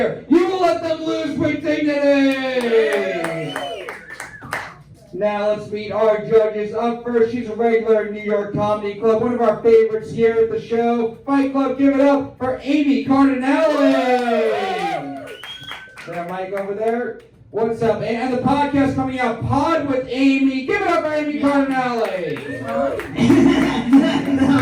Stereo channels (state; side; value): identical; both; correlation 1.00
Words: you will let them lose with dignity! Now let's meet our judges. Up first, she's a regular in New York Comedy Club, one of our favorites here at the show. Fight Club, give it up for Amy Cardinale! That mic over there. What's up? And the podcast coming out, Pod with Amy. Give it up for Amy Cardinale!